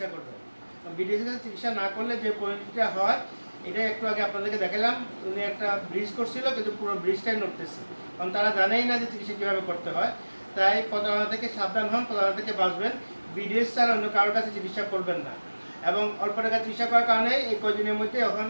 করবেন। বিডিএসের কাছে চিকিৎসা না করলে যে পরিণতিটা হয় এটা একটু আগে আপনাদেরকে দেখালাম। উনি একটা ব্রিজ করছিল কিন্তু পুরো ব্রিজটাই নড়তেছে, কারণ তারা জানেই না যে চিকিৎসা কীভাবে করতে হয়। তাই প্রতারণা থেকে সাবধান হন, প্রতারণা থেকে বাঁচবেন। বিডিএস ছাড়া অন্য কারোর কাছে চিকিৎসা করবেন না। এবং অল্প টাকা চিকিৎসা করার কারণে এই কদিনের মধ্যে এখন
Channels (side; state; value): both; inverted; correlation -1.00